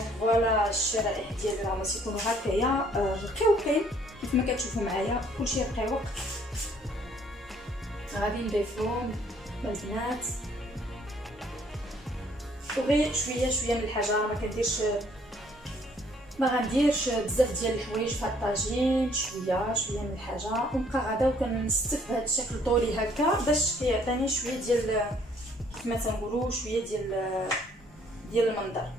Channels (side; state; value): both; normal; correlation 0.62